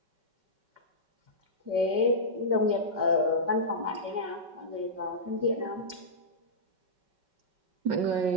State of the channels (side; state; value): left; late; 5.3 ms